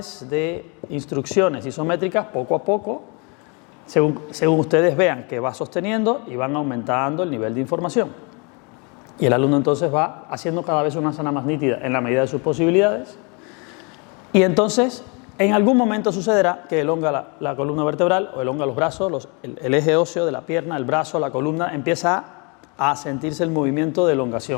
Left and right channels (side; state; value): right; quieter; 32.3 dB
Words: de instrucciones isométricas poco a poco, según ustedes vean que va sosteniendo y van aumentando el nivel de información. Y el alumno entonces va haciendo cada vez una asana más nítida en la medida de sus posibilidades. Y entonces, en algún momento sucederá que elonga la columna vertebral o elonga los brazos, el eje óseo de la pierna, el brazo, la columna, empieza a sentirse el movimiento de